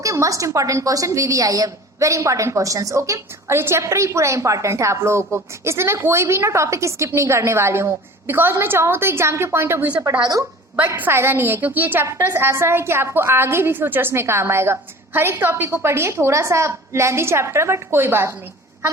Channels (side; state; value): both; normal; correlation 0.41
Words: must important question, VVI है, वेरी इंपॉर्टेंट क्वेश्चंस। ओके, और ये चैप्टर ही पूरा इंपॉर्टेंट है आप लोगों को, इसलिए मैं कोई भी ना टॉपिक स्किप नहीं करने वाली हूँ। बिकॉज मैं चाहूँ तो एग्जाम के पॉइंट ऑफ व्यू से पढ़ा दूँ, बट फायदा नहीं है, क्योंकि ये चैप्टर्स ऐसा है कि आपको आगे भी फ्यूचर्स में काम आएगा। हर एक टॉपिक को पढ़िए, थोड़ा सा लेंथी चैप्टर बट कोई बात नहीं,